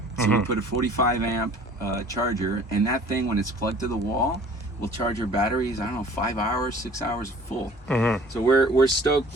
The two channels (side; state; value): both; normal; correlation 0.49